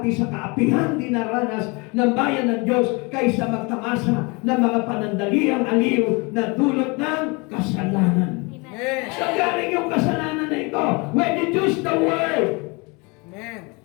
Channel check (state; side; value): quieter; right; 28.6 dB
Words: sa kaapihan dinaranas ng bayan ng Diyos kaysa magtamasa ng mga panandaliang aliw na dulot ng kasalanan. Amen. So galing yung kasalanan na ito. When you choose the Word Amen.